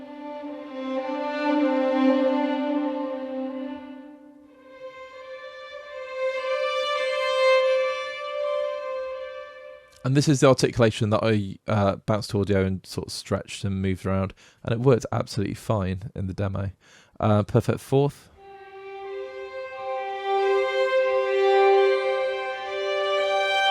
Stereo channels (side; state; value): both; identical; correlation 1.00